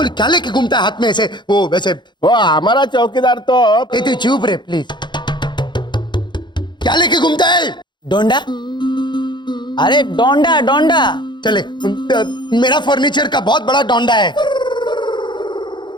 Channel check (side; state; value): right; late; 0.22 ms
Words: क्या लेके घूमता है हाथ में ऐसे? वो वैसे वो हमारा चौकीदार तो ए तू चुप रे प्लीज। क्या लेके घूमता है? डोंडा। अरे डोंडा डोंडा। चले, मेरा फर्नीचर का बहुत बड़ा डोंडा है।